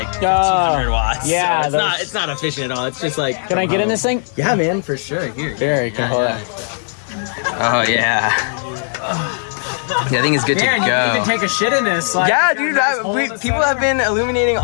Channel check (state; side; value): silent; right; digital silence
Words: 1,500 watts. Yeah, so it's not efficient at all. It's just like. Can I get in this thing? Yeah, man, for sure. Here. Very cool. Oh yeah. Yeah, I think it's good to go. You can even take a shit in this. Like, yeah, dude. People have been illuminating